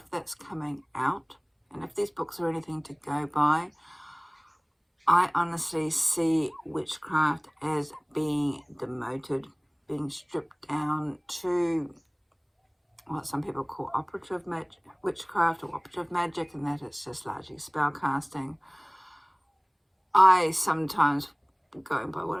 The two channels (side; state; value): both; identical; correlation 1.00